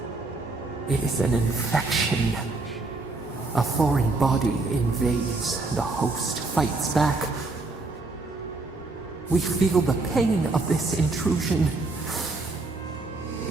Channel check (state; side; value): quieter; left; 3.4 dB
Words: It is an infection. A foreign body invades, the host fights back. We feel the pain of this intrusion.